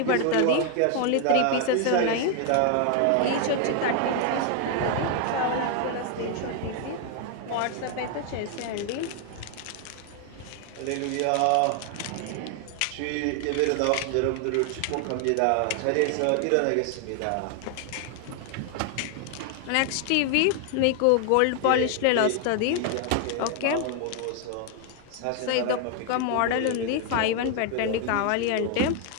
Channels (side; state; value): both; different; correlation 0.00